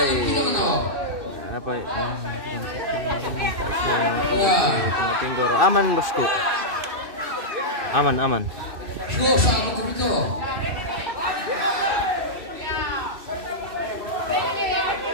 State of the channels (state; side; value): late; left; 2.6 ms